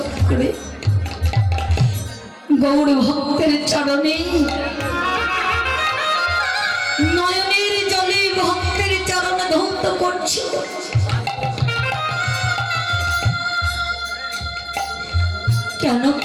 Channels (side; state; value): both; identical; correlation 1.00